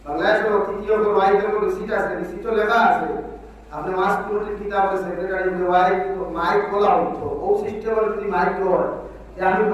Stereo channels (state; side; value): identical; both; correlation 1.00